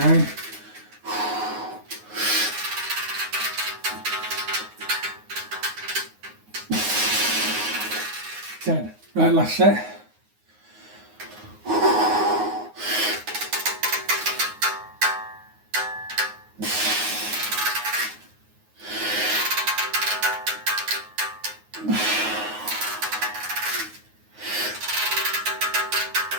10. Right, last set.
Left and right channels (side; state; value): left; late; 9.5 ms